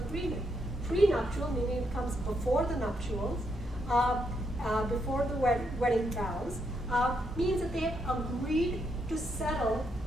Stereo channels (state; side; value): normal; both; correlation 0.78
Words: Prenuptial, meaning it comes before the nuptials, before the wedding vows, means that they agreed to settle